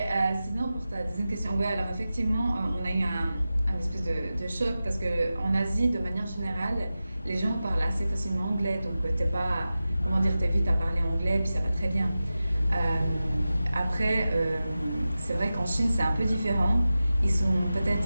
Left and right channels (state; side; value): inverted; both; correlation -0.94